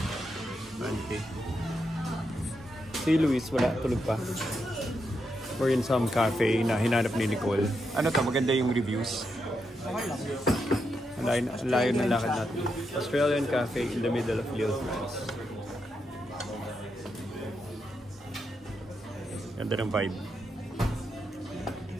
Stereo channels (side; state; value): both; normal; correlation 0.83